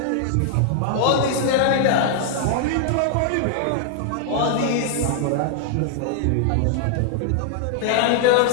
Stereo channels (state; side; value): different; both; correlation -0.01